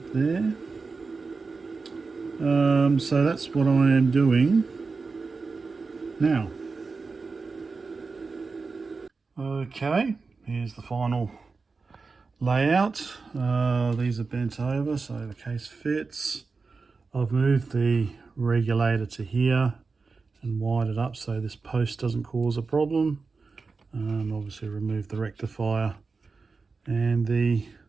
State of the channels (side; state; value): left; quieter; 4.4 dB